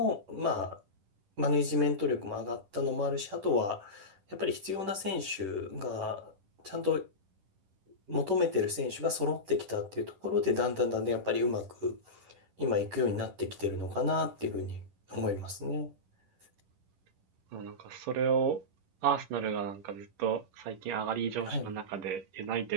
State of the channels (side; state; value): left; late; 10 ms